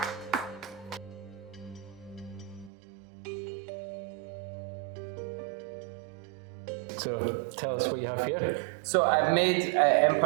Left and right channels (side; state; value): left; drops out; at 2.7 s